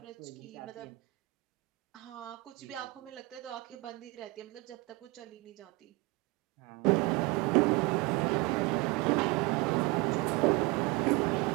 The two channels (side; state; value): left; quieter; 23.4 dB